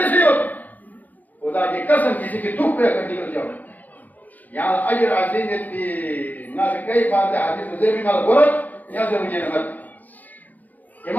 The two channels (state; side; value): late; right; 0.081 ms